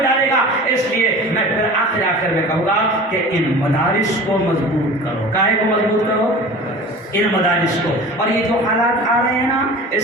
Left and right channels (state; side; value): normal; both; correlation 0.38